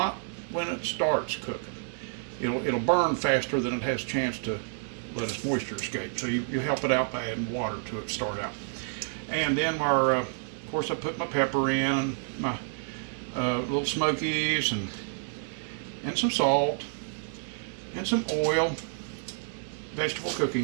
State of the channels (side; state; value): left; silent; digital silence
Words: when it starts cooking. It'll burn faster than it has a chance to let its moisture escape. So you help it out by adding water to it to start out. And then of course, I put my pepper in, and my Lil Smokies, and some salt, and some oil, vegetable